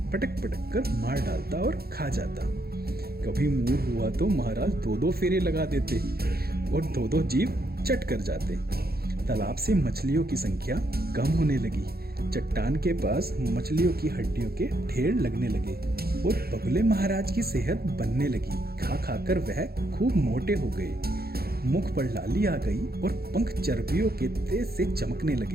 पटक पटक कर मार डालता और खा जाता। कभी मूड हुआ तो महाराज दो दो फेरे लगा देते और दो दो जीव चट कर जाते। तालाब से मछलियों की संख्या कम होने लगी। चट्टान के पास मछलियों की हड्डियों के ढेर लगने लगे और बगुले महाराज की सेहत बनने लगी। खा खाकर वह खूब मोटे हो गए। मुख पर लाली आ गई और पंख चर्बियों के तेज से चमकने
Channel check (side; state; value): left; late; 0.45 ms